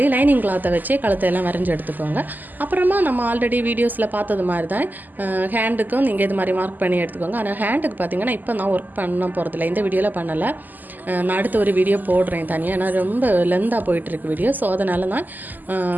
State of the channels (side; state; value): left; late; 0.085 ms